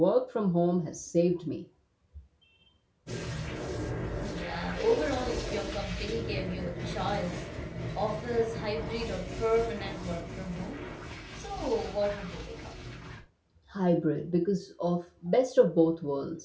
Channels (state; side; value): identical; both; correlation 1.00